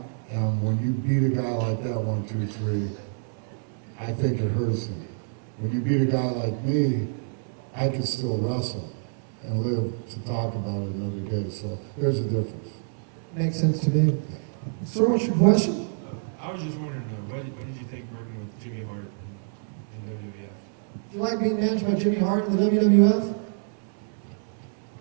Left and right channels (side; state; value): left; silent; digital silence